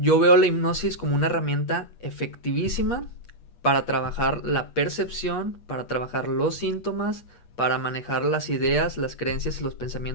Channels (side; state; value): right; late; 8.4 ms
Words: veo la hipnosis como una herramienta efectivísima para trabajar la percepción, para trabajar los síntomas, para manejar las ideas, las creencias y los